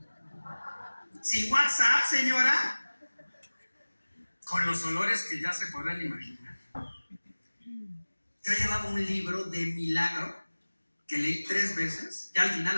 sin WhatsApp, señora, con los olores que ya se podrán imaginar. Yo llevaba un libro de milagro que leí 3 veces, ya al final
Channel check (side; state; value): both; inverted; correlation -1.00